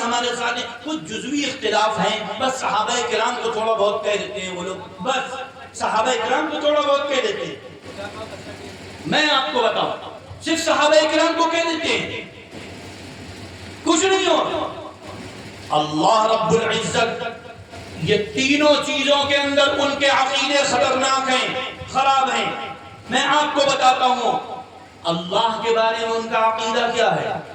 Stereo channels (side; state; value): both; identical; correlation 1.00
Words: ہمارے ساتھ ہیں، کچھ جزوی اختلاف ہیں، بس صحابہ کرام کو تھوڑا بہت کہہ دیتے ہیں وہ لوگ، بس صحابہ کرام کو تھوڑا بہت کہہ دیتے ہیں۔ میں آپ کو بتاؤں، صرف صحابہ کرام کو کہہ دیتے ہیں، کچھ نہیں ہو۔ اللہ رب العزت یہ تینوں چیزوں کے اندر ان کے عقیدے خطرناک ہیں، خراب ہیں۔ میں آپ کو بتاتا ہوں اللہ کے بارے میں ان کا عقیدہ کیا ہے،